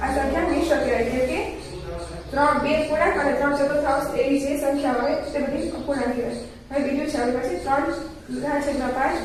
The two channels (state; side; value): identical; both; correlation 1.00